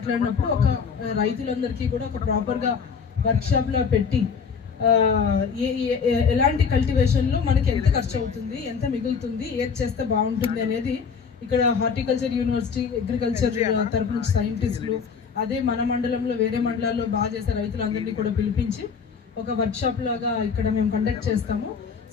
ఒక రైతులందరికీ కూడా ఒక ప్రాపర్ గా వర్క్ షాప్ లో పెట్టి ఎలాంటి కల్టివేషన్ లో మనకి ఎంత ఖర్చు అవుతుంది, ఎంత మిగులుతుంది, ఏది చేస్తే బాగుంటుంది అనేది ఇక్కడ హార్టికల్చర్ యూనివర్సిటీ, అగ్రికల్చర్ తరపు నుంచి సైంటిస్టులు, అదే మన మండలంలో వేరే మండలాల్లో బాగా చేసే రైతులందరినీ కూడా పిలిపించి ఒక వర్క్ షాప్ లాగా ఇక్కడ మేము కండక్ట్ చేస్తాము.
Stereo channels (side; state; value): right; quieter; 6.1 dB